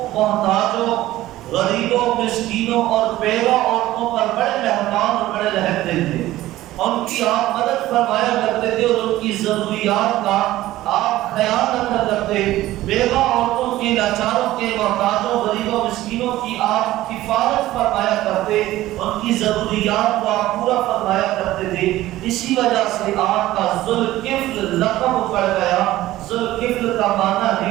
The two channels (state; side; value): quieter; left; 15.7 dB